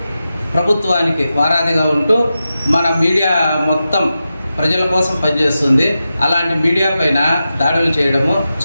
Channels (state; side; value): inverted; both; correlation -0.91